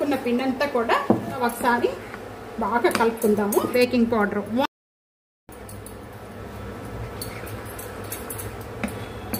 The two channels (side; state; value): both; identical; correlation 1.00